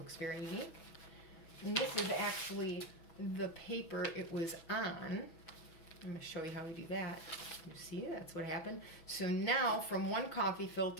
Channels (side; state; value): right; late; 6.1 ms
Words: very unique. And this is actually the paper it was on. I'm going to show you how we do that. You see, that's what happened. So now from one coffee